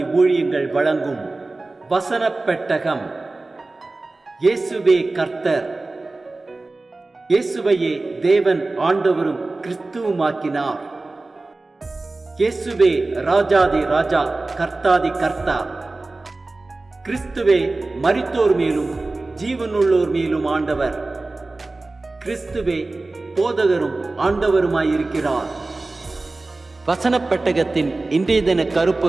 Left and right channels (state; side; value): quieter; left; 3.2 dB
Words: ஊழியங்கள் வழங்கும் வசனப் பெட்டகம். இயேசுவே கர்த்தர். இயேசுவையே தேவன் ஆண்டவரும் கிறிஸ்துவுமாக்கினார். இயேசுவே ராஜாதி ராஜா, கர்த்தாதி கர்த்தா. கிறிஸ்துவே மரித்தோர் மேலும் ஜீவனுள்ளோர் மேலும் ஆண்டவர். கிறிஸ்துவே போதகரும் ஆண்டவருமாயிருக்கிறார். வசனப் பெட்டகத்தின் இன்றைய தின